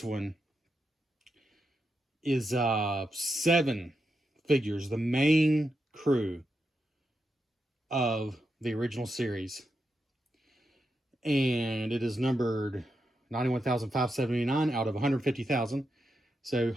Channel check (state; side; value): normal; both; correlation 0.85